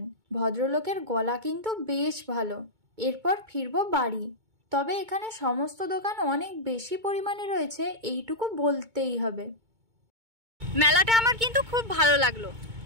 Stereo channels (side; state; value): left; late; 2.2 ms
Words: ভদ্রলোকের গলা কিন্তু বেশ ভালো। এরপর ফিরবো বাড়ি। তবে এখানে সমস্ত দোকান অনেক বেশি পরিমাণে রয়েছে, এইটুকু বলতেই হবে। মেলাটা আমার কিন্তু খুব ভালো লাগলো।